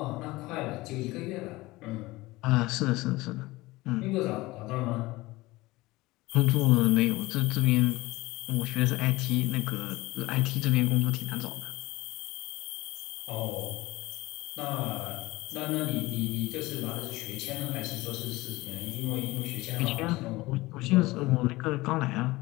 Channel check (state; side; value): quieter; right; 20.2 dB